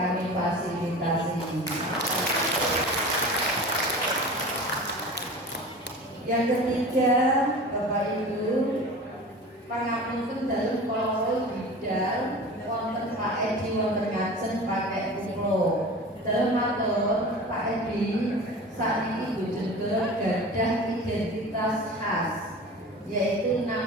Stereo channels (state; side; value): normal; both; correlation 0.36